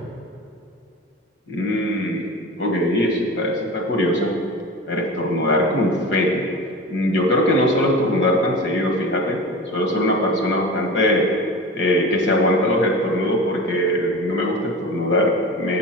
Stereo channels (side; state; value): both; normal; correlation 0.32